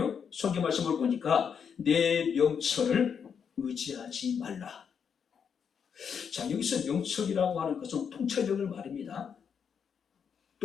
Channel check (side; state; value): right; quieter; 7.1 dB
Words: 성경 말씀을 보니까 내 명철을 의지하지 말라. 자, 여기서 명철이라고 하는 것은 통찰력을 말합니다.